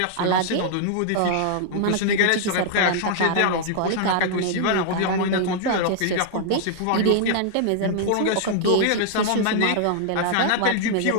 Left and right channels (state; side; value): different; both; correlation -0.01